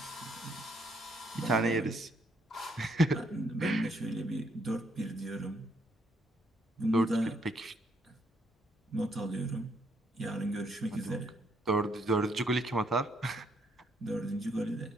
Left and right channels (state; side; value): normal; both; correlation 0.72